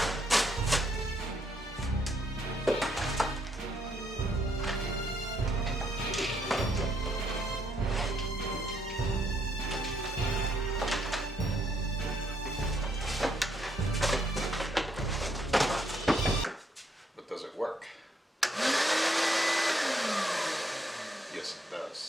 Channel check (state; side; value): normal; both; correlation 0.73